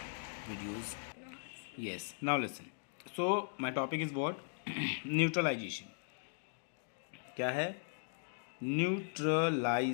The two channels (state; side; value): silent; right; digital silence